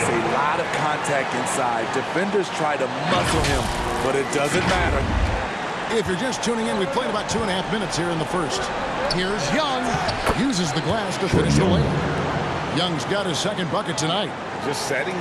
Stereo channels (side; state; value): both; identical; correlation 1.00